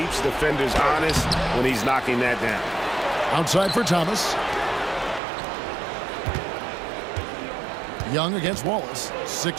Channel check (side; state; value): left; drops out; at 5.2 s